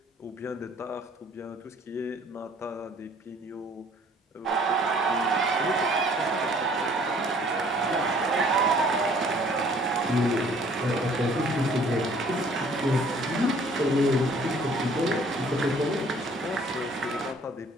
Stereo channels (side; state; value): both; normal; correlation 0.57